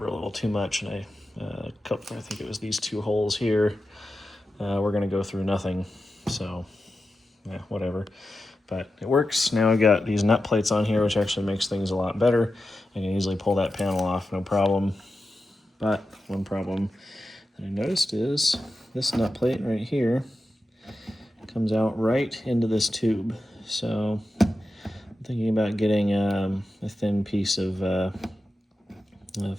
a little too much, and I think it was these 2 holes here. We're gonna go through nothing, so yeah, whatever. But it works. Now I've got these nut plates on here, which actually makes things a lot better. I can easily pull that panel off, no problem. But one problem that I noticed is this nut plate right here comes out right into this tube. So I'm thinking about getting a thin piece of a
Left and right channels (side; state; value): both; normal; correlation 0.91